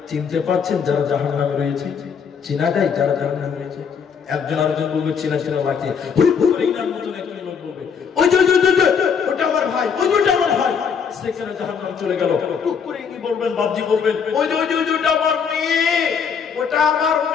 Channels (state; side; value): quieter; right; 6.6 dB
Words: চিনতে পারছেন যারা জাহান্নামে রয়েছে? চেনা যায় যারা জাহান্নামে রয়েছে? একজন আরেকজন বলবে চেনা চেনা লাগছে। ওটা আমার ভাই, ওটা আমার ভাই, সেখানে জাহান্নাম চলে গেল। টুক করে কি বলবেন? বাবজি বলবেন ওটা আমার মেয়ে, ওটা আমার